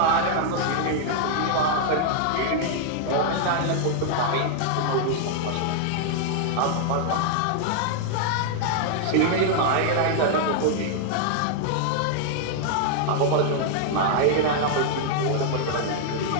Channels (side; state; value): both; different; correlation 0.00